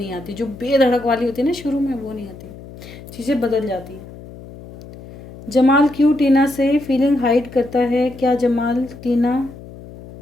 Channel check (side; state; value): left; noise; hum, 17 dB below the sound